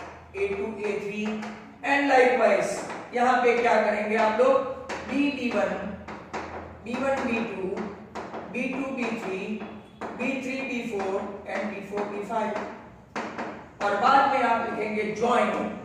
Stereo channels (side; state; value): both; identical; correlation 1.00